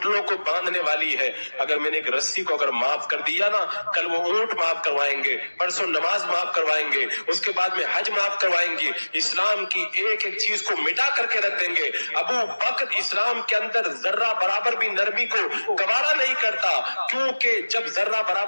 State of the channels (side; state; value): both; inverted; correlation -1.00